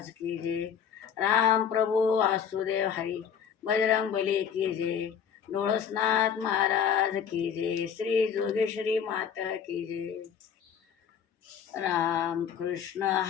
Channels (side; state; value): right; quieter; 7.8 dB